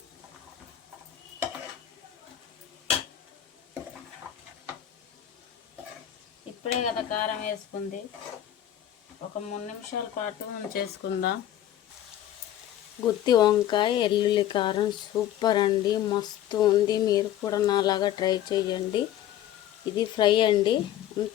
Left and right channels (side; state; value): right; quieter; 11.8 dB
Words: ఇప్పుడే కదా కారం వేసుకుంది. ఒక 3 నిమిషాల పాటు ఉంచేసుకుందాం. గుత్తి వంకాయ ఎల్లుల్లి కారం సూపర్ అండి, మస్తు ఉంది. మీరు కూడా నాలాగా ట్రై చేయండి. ఇది ఫ్రై అండి.